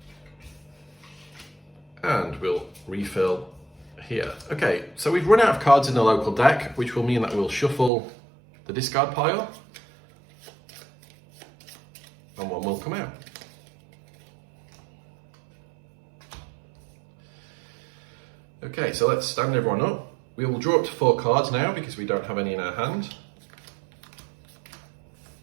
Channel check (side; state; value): left; drops out; at 7.9 s